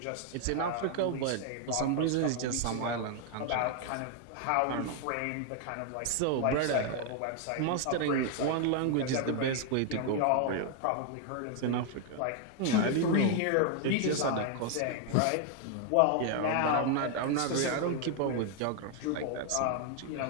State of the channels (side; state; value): both; different; correlation 0.00